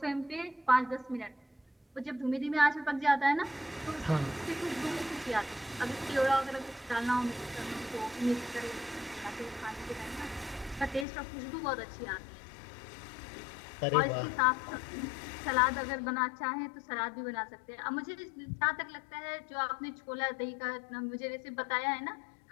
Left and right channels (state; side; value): drops out; right; at 11.1 s